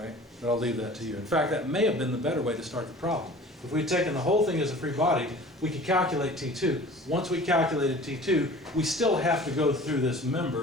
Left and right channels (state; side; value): normal; both; correlation 0.44